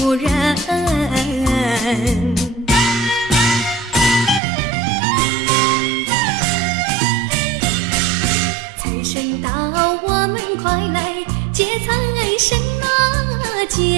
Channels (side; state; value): left; drops out; at 4.4 s